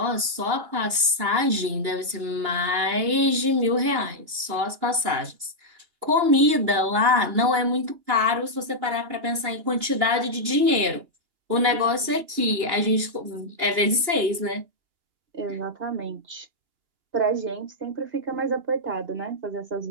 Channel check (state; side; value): late; left; 2.8 ms